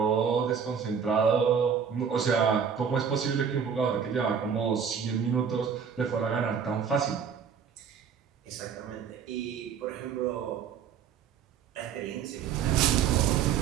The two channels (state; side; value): quieter; left; 7.1 dB